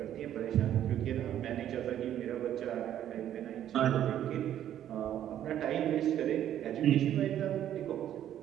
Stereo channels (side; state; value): left; quieter; 11.1 dB